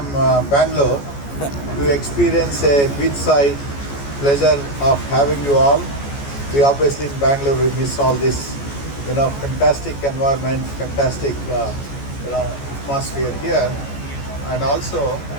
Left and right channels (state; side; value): late; right; 14 ms